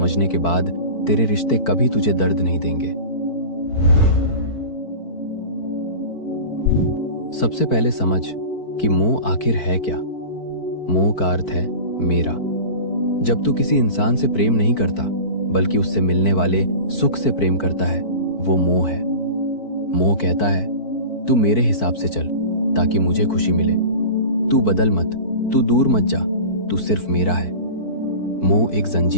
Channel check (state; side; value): late; right; 4.5 ms